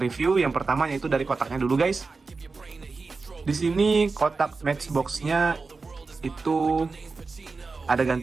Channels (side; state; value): left; quieter; 4.2 dB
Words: Yang pertama yaitu dari kotaknya dulu guys. Di sini kotak Matchbox-nya itu ada